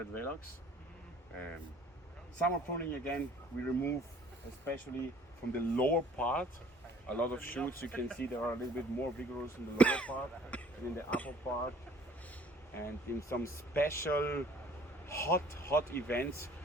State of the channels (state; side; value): normal; both; correlation 0.54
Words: Velox. Summer pruning again, we remove especially from the lower part a lot of shoots. You can see they are a little bit more vigorous in the lower part than in the upper part. And in some special hot events,